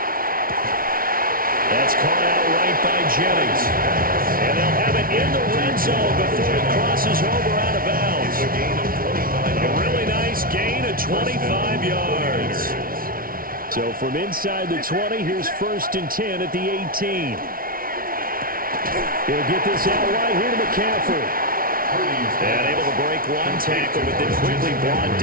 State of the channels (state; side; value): late; left; 0.42 ms